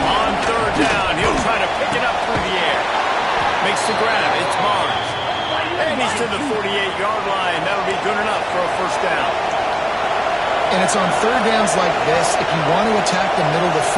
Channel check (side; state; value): both; identical; correlation 1.00